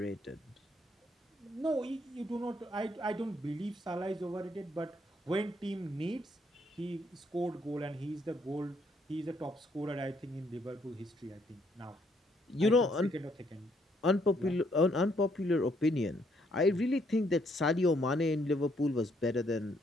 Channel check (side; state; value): both; normal; correlation 0.70